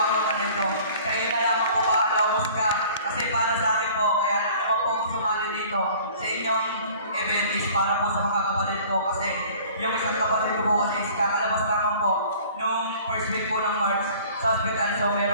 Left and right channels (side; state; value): both; inverted; correlation -0.49